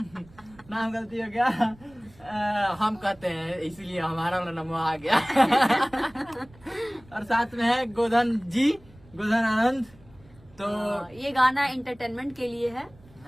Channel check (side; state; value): right; noise; rumble, 26 dB below the sound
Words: गलती हो गया। हम कहते हैं इसीलिए हमारा नमो आ गया। और साथ में है गोधन जी, गोधन आनंद। तो ये गाना एंटरटेनमेंट के लिए है।